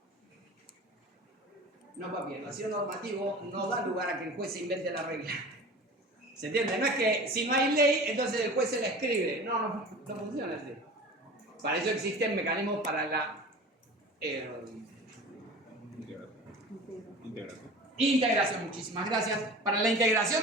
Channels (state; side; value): normal; both; correlation 0.38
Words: No, papi, el vacío normativo no da lugar a que el juez se invente la regla. ¿Se entiende? No es que si no hay ley, entonces el juez se la escribe. No funciona así. Para eso existen mecanismos para la integración. Muchísimas gracias. Para la integración